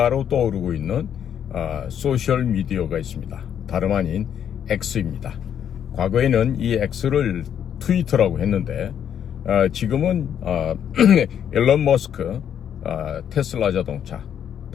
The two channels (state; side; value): quieter; right; 9.0 dB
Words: 떠오르고 있는 소셜 미디어가 있습니다. 다름 아닌 X입니다. 과거에는 이 X를 트위터라고 했는데 지금은 일론 머스크 테슬라 자동차